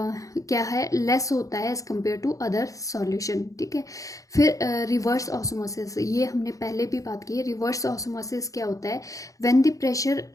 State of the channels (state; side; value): late; right; 0.16 ms